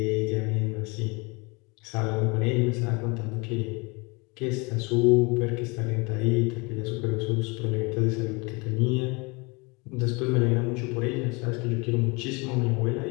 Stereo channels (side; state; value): right; quieter; 28.2 dB